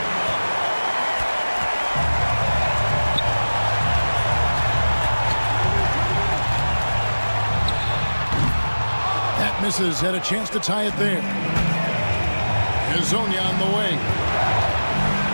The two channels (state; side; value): inverted; both; correlation -1.00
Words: That misses. Had a chance to tie it there. Hazonia on the way.